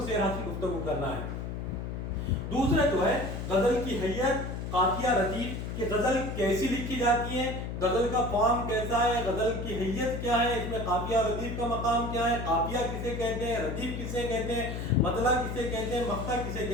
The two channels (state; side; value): noise; left; hum, 5 dB below the sound